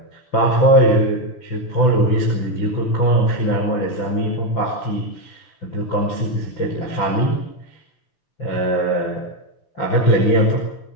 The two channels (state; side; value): late; right; 6.0 ms